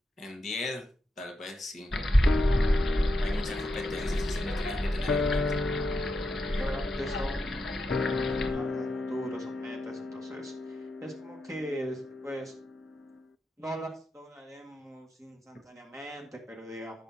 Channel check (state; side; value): normal; both; correlation 0.86